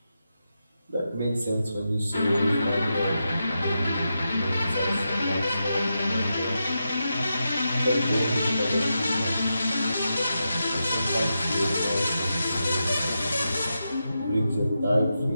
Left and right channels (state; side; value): inverted; both; correlation -0.87